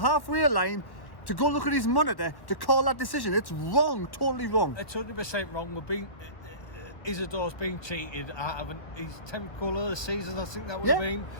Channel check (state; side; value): late; right; 1.1 ms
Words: line to go look at his monitor to call that decision, it's wrong, totally wrong. It's 100% wrong. Isidore's been cheated out of his 10th goal of the season, I think that would have been.